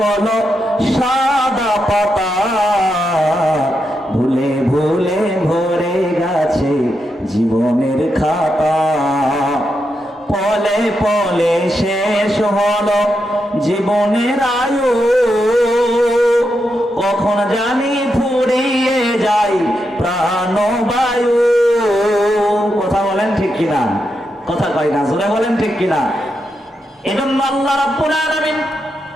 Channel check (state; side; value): normal; both; correlation 0.84